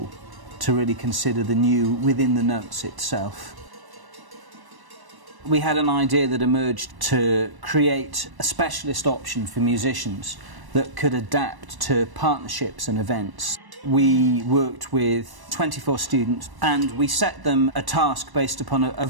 to really consider the new within the notes itself. We had an idea that emerged to create a specialist option for musicians that could adapt to partnerships and events. We worked with 24 students and we set them a task based upon a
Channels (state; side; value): late; left; 1.1 ms